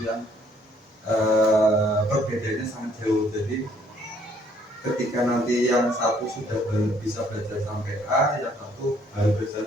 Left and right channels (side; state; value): both; normal; correlation 0.64